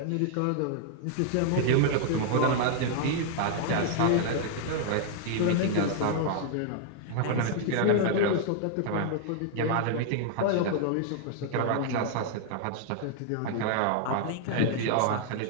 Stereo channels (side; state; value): both; different; correlation 0.00